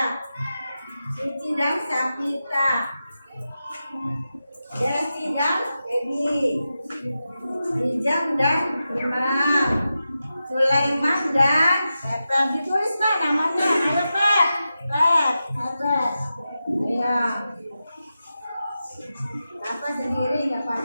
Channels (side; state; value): both; inverted; correlation -0.91